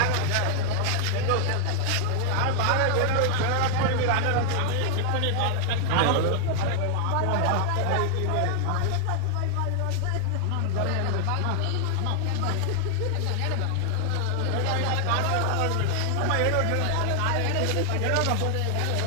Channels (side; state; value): both; different; correlation -0.01